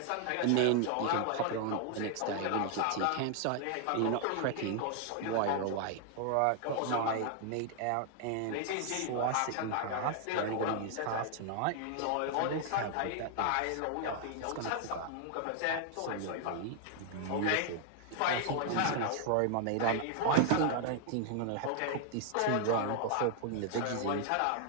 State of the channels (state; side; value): different; both; correlation 0.00